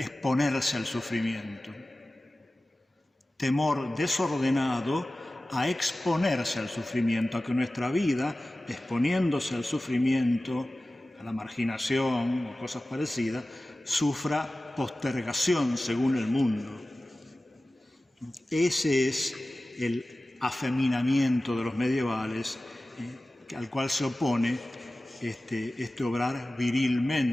al sufrimiento. Temor desordenado a exponerse al sufrimiento, a que nuestra vida, exponiéndose al sufrimiento, a la marginación o cosas parecidas, sufra postergación según el mundo. Ese es el afeminamiento de los medievales, al cual se opone este obrar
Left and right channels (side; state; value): both; normal; correlation 0.96